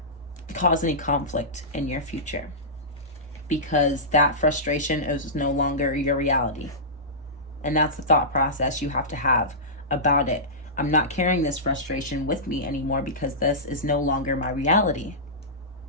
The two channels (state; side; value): normal; both; correlation -0.17